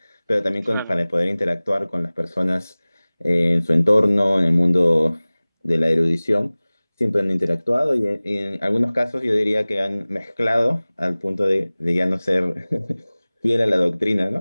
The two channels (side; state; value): both; inverted; correlation -0.99